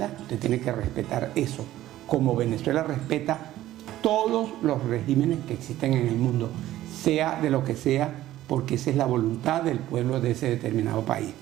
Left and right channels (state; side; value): quieter; left; 14.3 dB